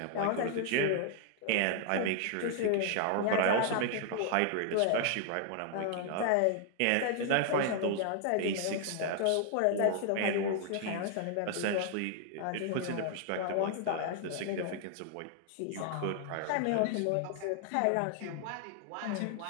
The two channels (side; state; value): both; different; correlation 0.00